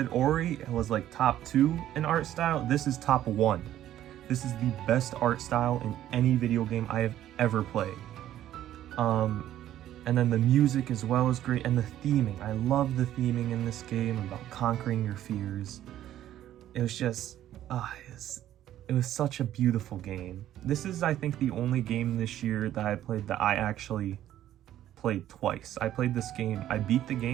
Ori was like top 2 in art style, this is top 1. This is the best art style in any video game I have ever played. And then the music as well is great, and the theming. I love the theming in this game about conquering your fears. It was just, it was such a beautiful game. This is, I think, the only game this year that I played that I actually played twice. I played this game, I beat the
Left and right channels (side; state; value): left; quieter; 12.3 dB